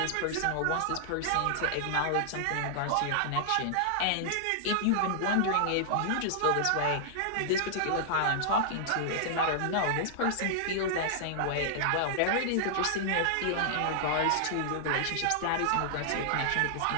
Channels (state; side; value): different; both; correlation -0.01